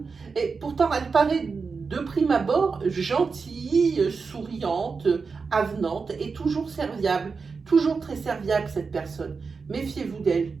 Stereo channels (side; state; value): left; quieter; 4.9 dB